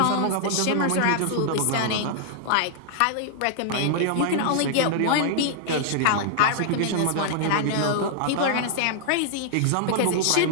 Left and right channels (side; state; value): both; different; correlation -0.01